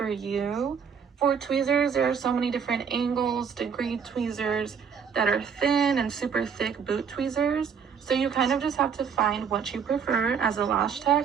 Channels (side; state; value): left; quieter; 6.7 dB